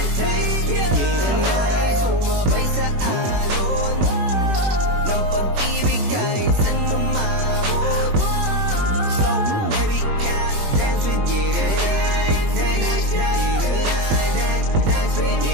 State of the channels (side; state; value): left; late; 21 ms